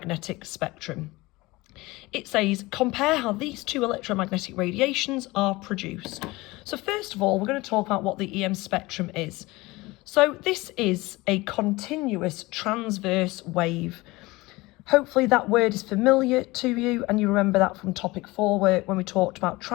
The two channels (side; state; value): right; quieter; 21.3 dB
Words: spectrum. It says, compare how these two electromagnetic radiations are produced. So first of all, we're going to talk about what the EM spectrum is. So this is a continuous transverse wave. Hopefully that word is familiar to you and you remember that from topic 4 when we talked about